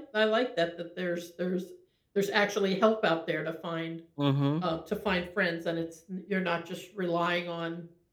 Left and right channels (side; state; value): both; identical; correlation 1.00